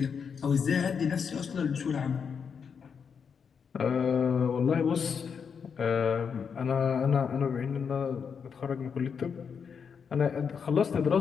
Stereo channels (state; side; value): quieter; right; 6.5 dB